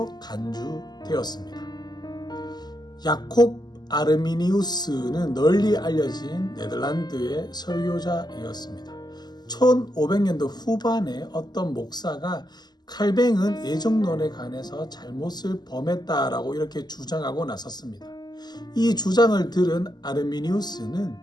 간주되었습니다. 야콥 아르미니우스는 널리 알려진 네덜란드의 설교자이었습니다. 1500년도 후반에 어떤 목사가 칼뱅은 예정론에 관해서 잘못을 범했다라고 이렇게 주장하고 나섰습니다. 이 주장을 들은 아르미니우스는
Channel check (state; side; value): late; right; 0.20 ms